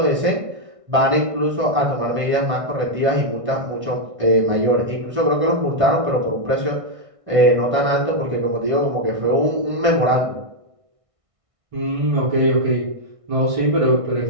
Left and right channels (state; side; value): late; left; 1.6 ms